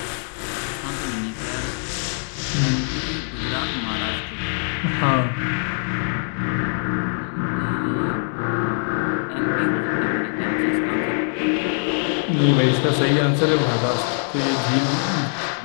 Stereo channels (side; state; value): right; silent; 59 dB below the other